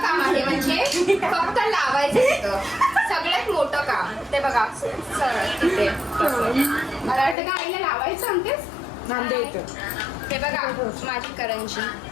काम आहे, म्हणजे फक्त लावायचं तिथं सगळ्यात मोठं काम. ते बघा तिथे मला वाटतं का आईला लावायचं सांगतेस. हे बघा माझी करंजी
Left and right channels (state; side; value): drops out; right; at 7.4 s